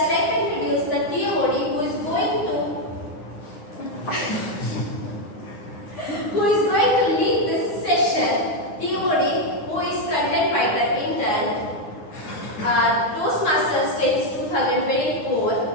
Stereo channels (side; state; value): right; late; 9.7 ms